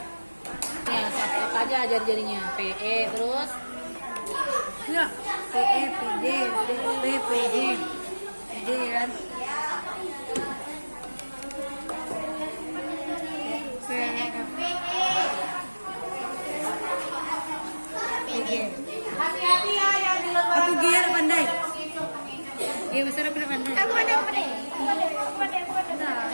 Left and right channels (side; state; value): both; inverted; correlation -1.00